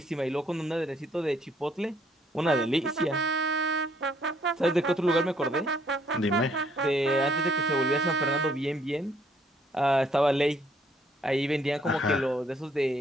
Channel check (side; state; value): both; normal; correlation 0.66